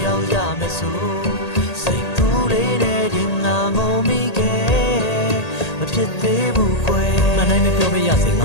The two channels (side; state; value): right; late; 1.8 ms